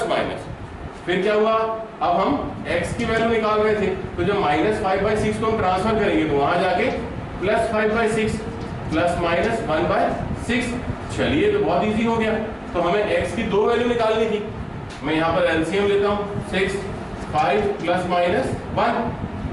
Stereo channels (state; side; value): identical; both; correlation 1.00